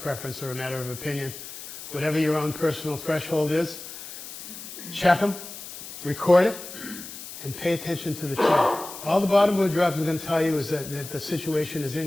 preference or a matter of opinion. Whatever your own personal threshold is, check them, record it, and pay attention to the trend. All the bottom board drops are going to tell you is that the situation is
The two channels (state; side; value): noise; left; hiss, 12 dB below the sound